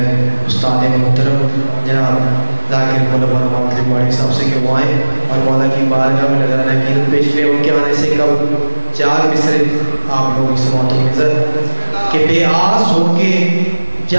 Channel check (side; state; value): both; inverted; correlation -1.00